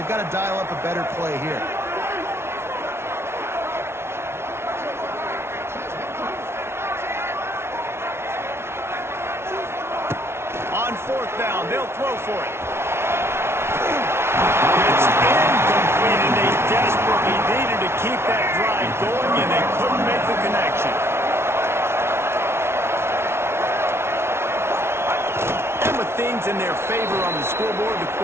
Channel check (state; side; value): late; left; 0.12 ms